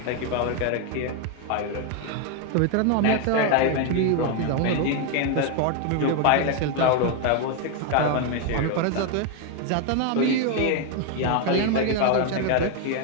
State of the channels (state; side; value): different; both; correlation 0.01